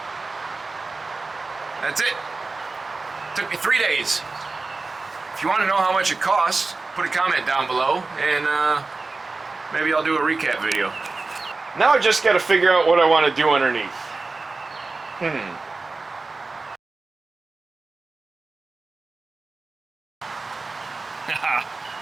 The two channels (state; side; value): quieter; left; 3.7 dB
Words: That's it. Took me 3 days. If you want to know how much it costs, put a comment down below and maybe I'll do a recap video. Now I just got to figure out what I want to do underneath.